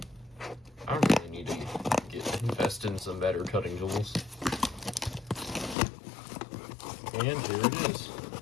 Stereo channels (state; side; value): drops out; right; at 5.8 s